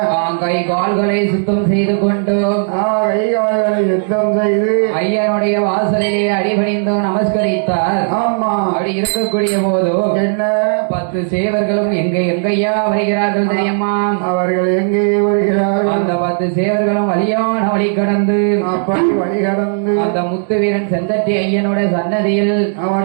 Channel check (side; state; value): left; silent; digital silence